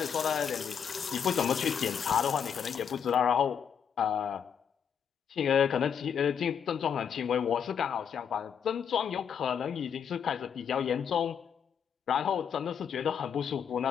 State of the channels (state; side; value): quieter; right; 7.7 dB